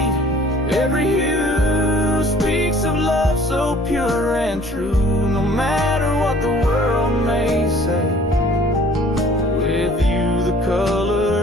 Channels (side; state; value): both; normal; correlation 0.53